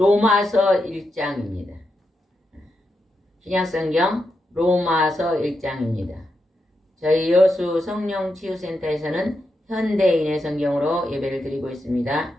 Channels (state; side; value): normal; both; correlation 0.85